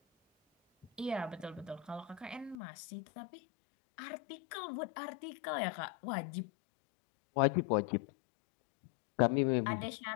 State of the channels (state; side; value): drops out; right; at 2.6 s